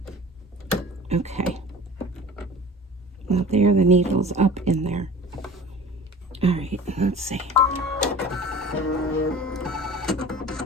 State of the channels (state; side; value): normal; both; correlation 0.42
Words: Okay. Well, there are the needles up in there. All right, let's see.